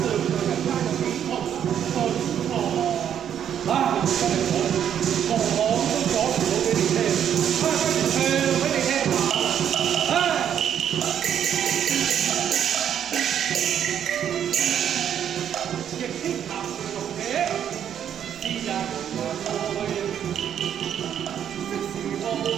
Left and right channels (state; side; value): quieter; left; 9.3 dB